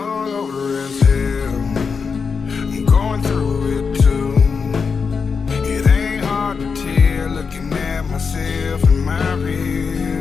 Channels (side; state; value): right; quieter; 5.5 dB